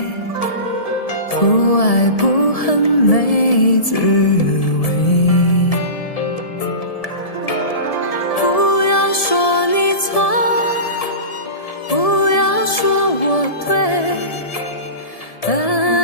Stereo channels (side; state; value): right; late; 1.7 ms